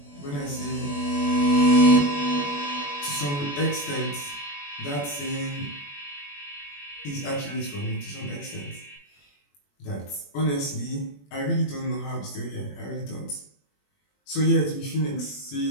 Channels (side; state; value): right; late; 21 ms